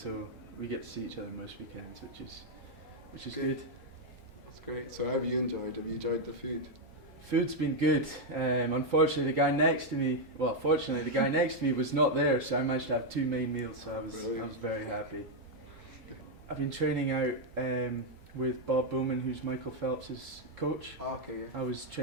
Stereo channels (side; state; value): both; normal; correlation 0.00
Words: we get to see each other most weekends, which is good. That's great. So, how have you enjoyed? Have you enjoyed the food? Food's been good. Unfortunately, the guy next to me was not there, so I managed to have 2 main meals. So I was very happy. I've been training out with Bob Bowman, who's Michael Phelps' coach. Oh, okay. Yeah. I was